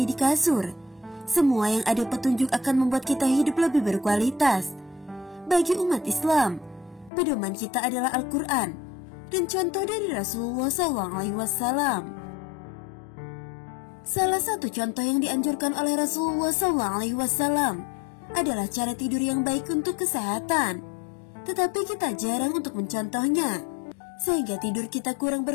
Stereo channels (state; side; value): drops out; right; at 7.1 s